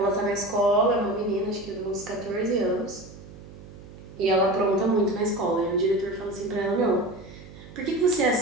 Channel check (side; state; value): right; noise; hum, 17 dB below the sound